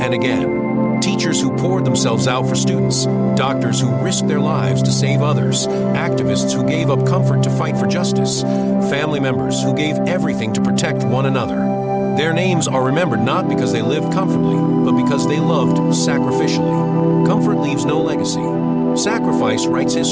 and again. Teachers who poured themselves out for students, doctors who risked their lives to save others, activists who gave up comfort to fight for justice, family members who gave everything to protect one another. Their names are remembered not because they lived comfortably, but because they loved sacrificially. Comfort leaves no legacy. Sacrifice writes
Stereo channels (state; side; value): noise; right; rumble, 28 dB below the sound